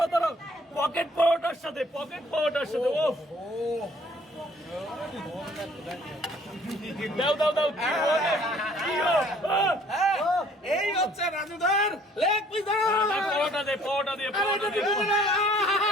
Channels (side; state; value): both; normal; correlation 0.58